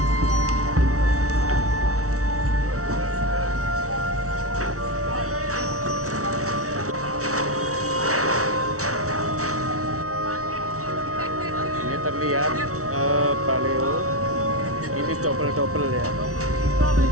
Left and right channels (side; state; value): left; late; 0.64 ms